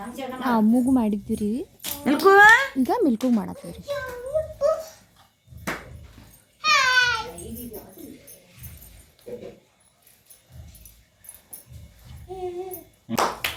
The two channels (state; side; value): identical; both; correlation 1.00